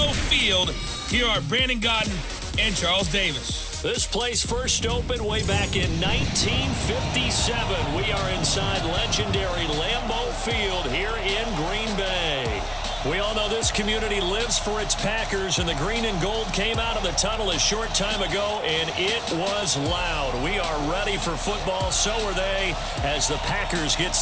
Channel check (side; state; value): both; identical; correlation 1.00